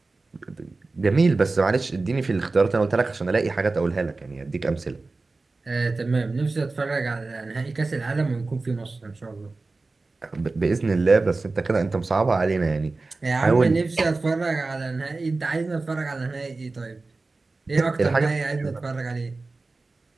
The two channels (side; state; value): left; quieter; 3.6 dB